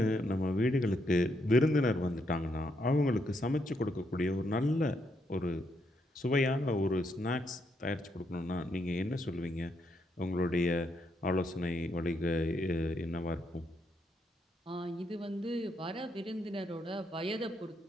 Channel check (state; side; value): normal; both; correlation 0.77